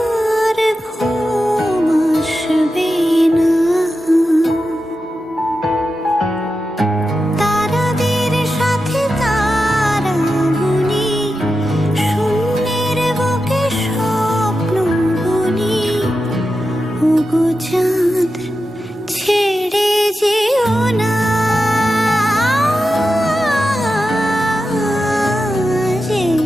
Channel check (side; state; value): both; normal; correlation 0.90